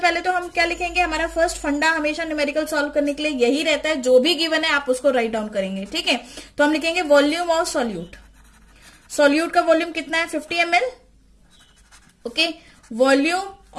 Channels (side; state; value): both; identical; correlation 1.00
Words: तो हम क्या लिखेंगे, हमारा फर्स्ट फंडा हमेशा न्यूमेरिकल सॉल्व करने के लिए यही रहता है, जो भी गिवन है आप उसको राइट डाउन करेंगे। ठीक है, तो हम लिखेंगे वॉल्यूम ऑफ सॉल्यूट। सॉल्यूट का वॉल्यूम कितना है, 50 ml। Okay,